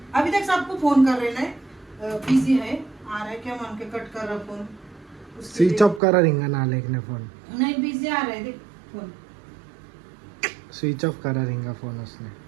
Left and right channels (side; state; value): left; drops out; at 6.0 s